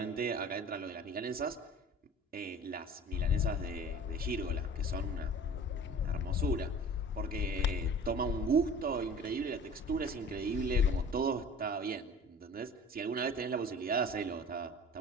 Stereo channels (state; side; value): normal; both; correlation 0.42